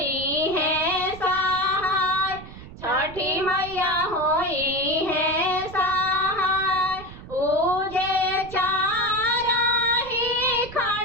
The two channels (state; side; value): noise; right; rumble, 15 dB below the sound